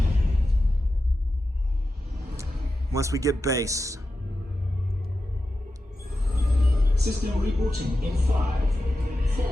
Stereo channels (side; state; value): both; normal; correlation 0.91